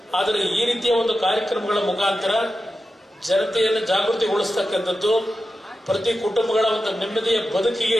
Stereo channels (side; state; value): both; normal; correlation 0.91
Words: ಆದರೆ ಈ ರೀತಿಯ ಒಂದು ಕಾರ್ಯಕ್ರಮಗಳ ಮುಖಾಂತರ ಜನತೆಯನ್ನು ಜಾಗೃತಿಗೊಳಿಸ್ತಕ್ಕಂಥದ್ದು, ಪ್ರತಿ ಕುಟುಂಬಗಳ ಒಂದು ನೆಮ್ಮದಿಯ